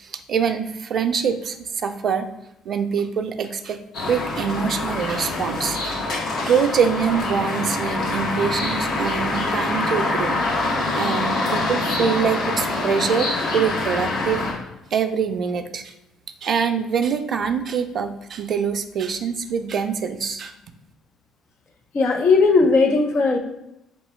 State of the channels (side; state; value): both; normal; correlation 0.61